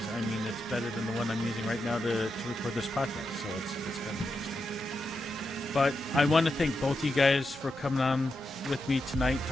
I mean, it's better than the one I'm using right now to record this podcast. So it's kind of interesting. But I want to thank both you guys for coming on with me tonight,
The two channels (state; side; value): normal; both; correlation 0.86